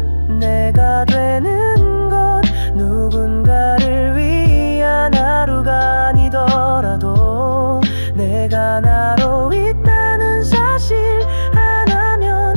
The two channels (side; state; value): both; inverted; correlation -1.00